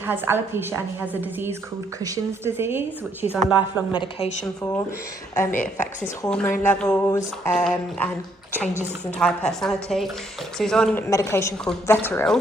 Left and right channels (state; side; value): normal; both; correlation 0.70